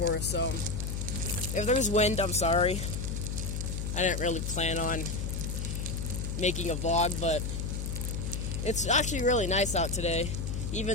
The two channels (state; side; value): noise; left; hum, 3 dB below the sound